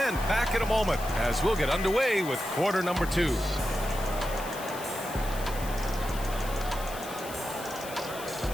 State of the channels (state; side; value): noise; left; hiss, 13 dB below the sound